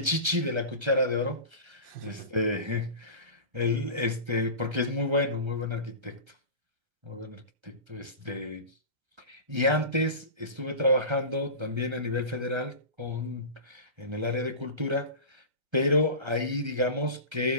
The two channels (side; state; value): left; late; 1.3 ms